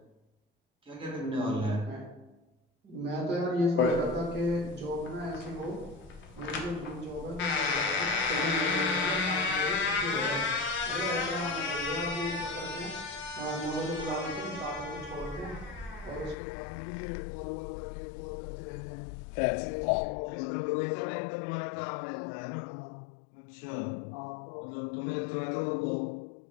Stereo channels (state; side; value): drops out; right; at 16.4 s